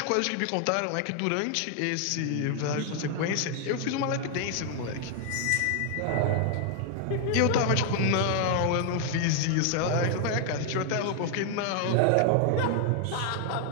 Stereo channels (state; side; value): different; both; correlation 0.00